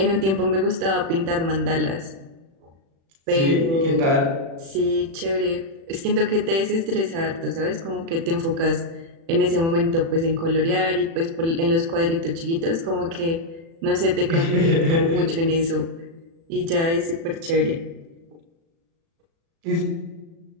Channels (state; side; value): late; left; 36 ms